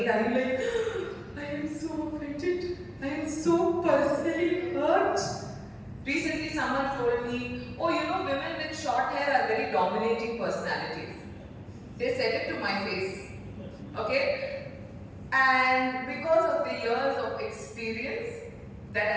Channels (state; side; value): identical; both; correlation 1.00